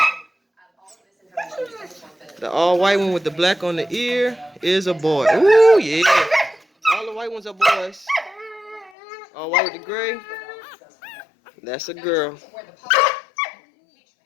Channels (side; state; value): right; drops out; at 8.9 s